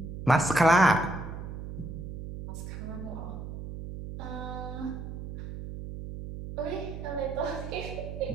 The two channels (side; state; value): right; noise; hum, 8 dB below the sound